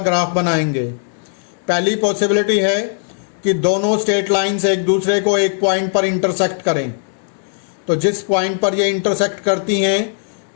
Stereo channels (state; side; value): silent; right; digital silence